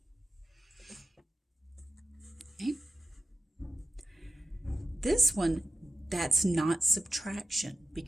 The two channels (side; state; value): both; normal; correlation 0.94